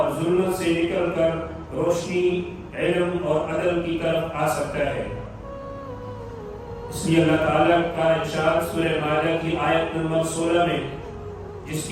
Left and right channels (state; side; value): identical; both; correlation 1.00